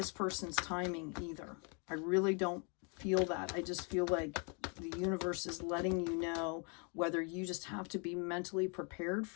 person's timing either. I really don't feel that. I just feel like the universe is letting you know whether you just have to be mentally prepared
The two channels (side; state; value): right; quieter; 35.9 dB